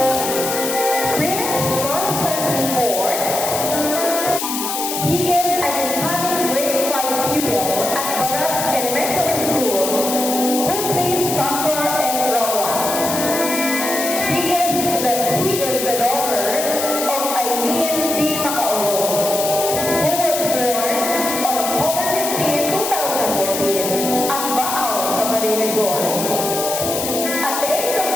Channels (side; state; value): left; noise; hiss, 3 dB below the sound